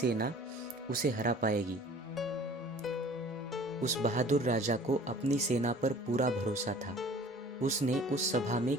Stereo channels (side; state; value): both; normal; correlation 0.48